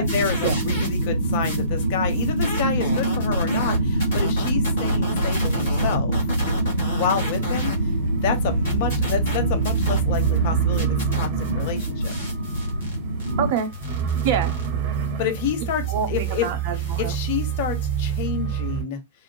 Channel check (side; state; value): both; inverted; correlation -0.38